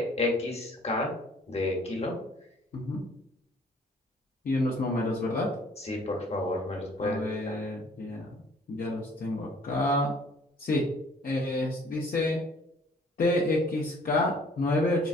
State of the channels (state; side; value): normal; both; correlation 0.56